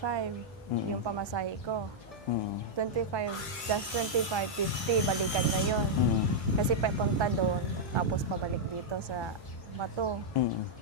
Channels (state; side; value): normal; both; correlation -0.05